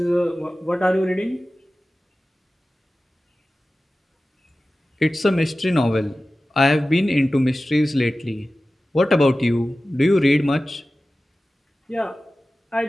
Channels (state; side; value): normal; both; correlation 0.95